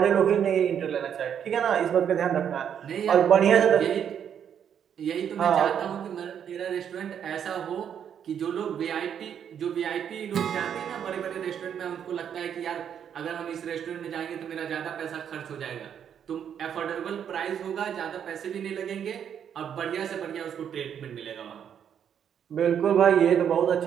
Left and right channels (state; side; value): quieter; left; 8.6 dB